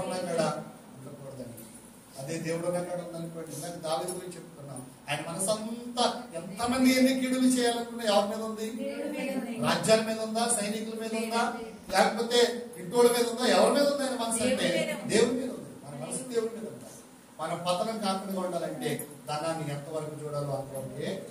ఉన్నక్కడ ఉండకూడదండి. అదే దేవుడు ఉన్నక్కడ ఉందనుకోండి. ఇందాక దావీదు గురించి చెప్పుకున్నాం. ఆయన మనసు అంతా ఎంతమంది ఎన్ని కీడులు చేయాలనుకున్నా ఎవరి మీద ఉంది? రాజ్యాల మీద ఉందా? సైనికుల మీద ఉందా? లేకపోతే ఇంటోళ్ళ మీద ఉందా? ఎవరి మీద ఉంది ఆయన మనసు? అంటే దేవుడి మీద ఉంది. మన మనసు దేవుడి మీద ఉందా? మనం పతనం కాకుండా ఉండాలంటే ధనాన్ని ఎంతవరకు చూడాలో అంతవరకే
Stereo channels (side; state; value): both; identical; correlation 1.00